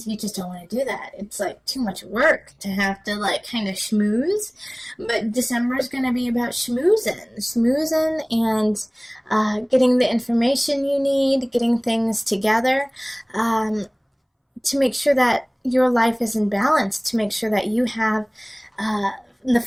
you just don't want to do that. It's like too much work to have to kind of schmooze. But December is going to be about schmoozing and getting the information you need, getting things together, to make sure that your life is in balance, to make sure that you have the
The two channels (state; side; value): identical; both; correlation 1.00